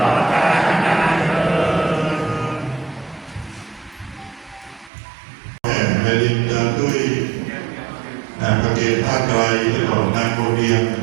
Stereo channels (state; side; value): drops out; left; at 4.9 s